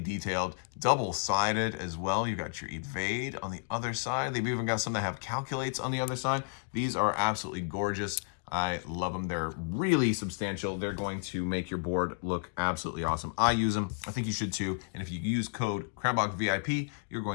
double-sided as well. You've got your evade on the other side. They've even got some that have calculates on the other side. These are absolutely gorgeous. I love them. They're really substantial. They're going to make your board look absolutely awesome. I use them. I think you should too. And if you use code Crabbok VIP, you're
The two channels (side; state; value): right; silent; digital silence